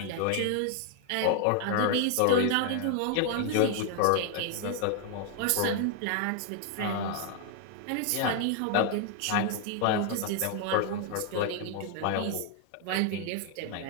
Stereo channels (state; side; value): different; both; correlation 0.00